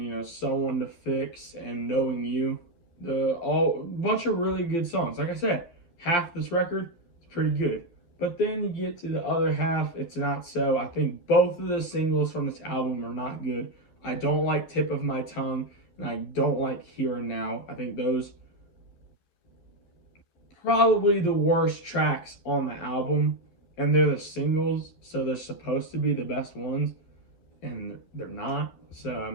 Someone to Fix and Knowing You. A bunch of really good songs. Like I said, half this record is pretty good, but then you get to the other half, it's not so. I think both of the singles from this album are not good. I don't like Tip of My Tongue, and I don't like Here and Now. I think those probably the worst tracks on the album, and they're the singles, so they're supposed to be the best ones, and they're not. So I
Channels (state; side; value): late; right; 11 ms